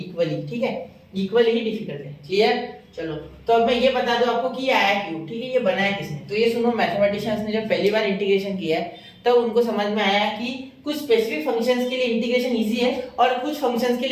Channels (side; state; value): both; identical; correlation 1.00